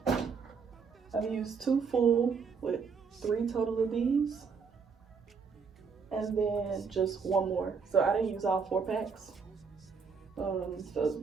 I've used 2 full with 3 total of these. And then just 1 more. So I didn't use all 4 packs. So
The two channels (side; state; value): left; quieter; 5.6 dB